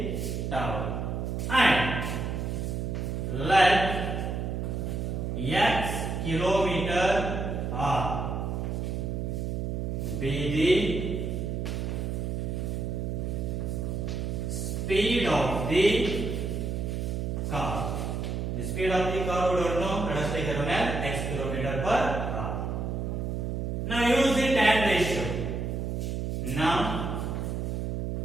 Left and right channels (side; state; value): right; noise; hum, 2 dB below the sound